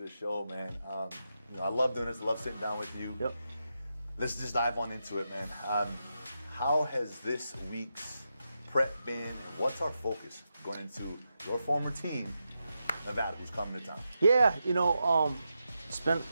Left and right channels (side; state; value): both; inverted; correlation -0.87